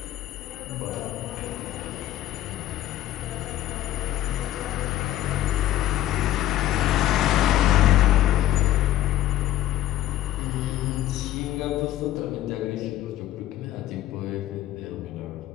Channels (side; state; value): right; quieter; 13.3 dB